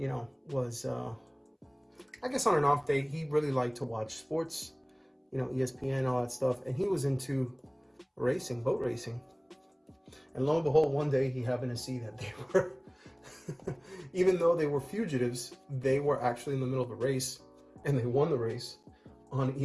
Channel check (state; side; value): identical; both; correlation 1.00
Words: know, was, I guess on an off day, he really liked to watch sports, you know, ESPN, all that stuff. And he was into racing, boat racing. And lo and behold, one day he happened to see that they were, even though they were fugitives, they were actually in the middle of a race, and they won the race on